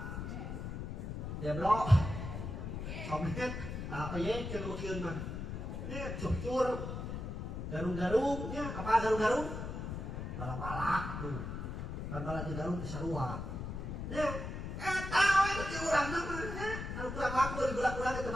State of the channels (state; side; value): noise; left; rumble, 5 dB below the sound